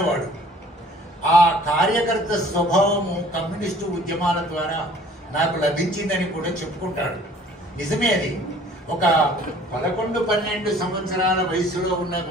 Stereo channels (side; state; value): both; normal; correlation 0.53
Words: వాడు. ఆ కార్యకర్త స్వభావము కమ్యూనిస్టు ఉద్యమాల ద్వారా నాకు లభించిందని కూడా చెప్పుకుంటాడు. నిజమే అది. ఒక 11-12 సంవత్సరాల వయసులో ఉన్న